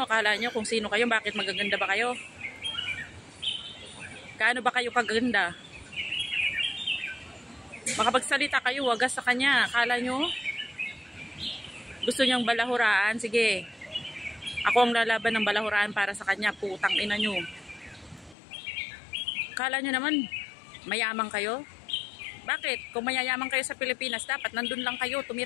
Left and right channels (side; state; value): right; drops out; at 18.4 s